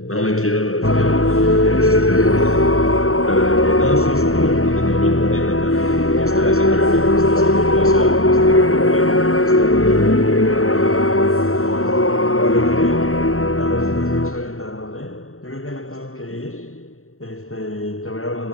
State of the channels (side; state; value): right; late; 0.63 ms